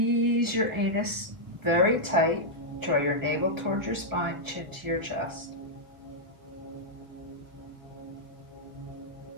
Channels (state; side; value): late; left; 1.2 ms